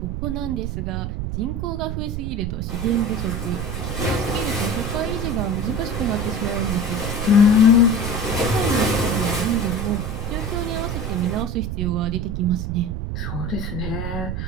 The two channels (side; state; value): right; noise; rumble, 3 dB below the sound